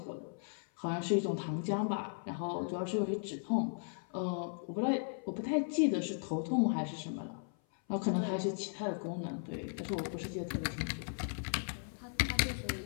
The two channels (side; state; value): right; silent; 53 dB below the other